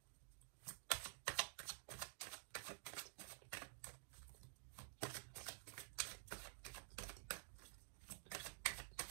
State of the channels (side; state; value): left; silent; digital silence